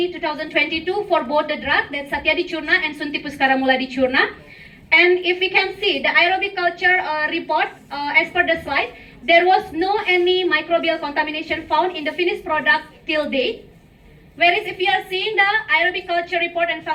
2022 for both the drug, that's Shatyadi Churna and Shunthi Pushkaramooladi Churna. And if we can see the aerobic culture report as per the slide, there was no any microbial contamination found in the finished product till date. Whereas if we are seeing the aerobic culture report and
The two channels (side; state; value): both; identical; correlation 1.00